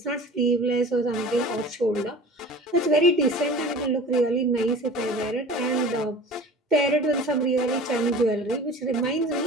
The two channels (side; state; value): both; normal; correlation 0.40